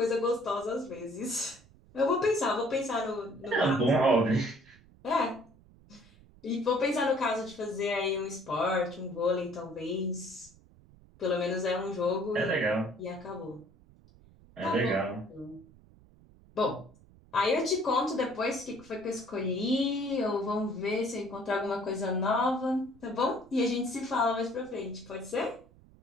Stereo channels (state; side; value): noise; right; rumble, 25 dB below the sound